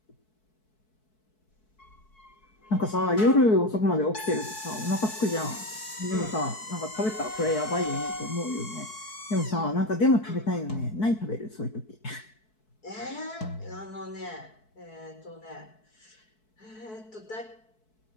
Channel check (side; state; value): right; late; 4.6 ms